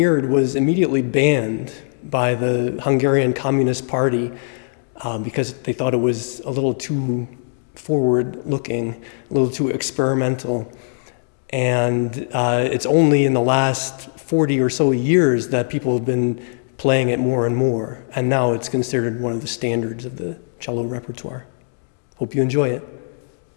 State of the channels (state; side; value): silent; right; digital silence